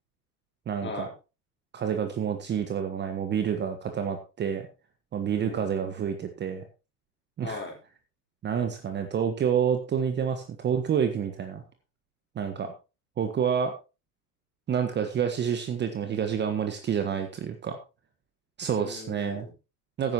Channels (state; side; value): quieter; left; 7.3 dB